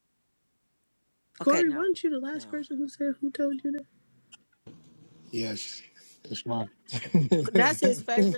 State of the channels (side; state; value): both; inverted; correlation -1.00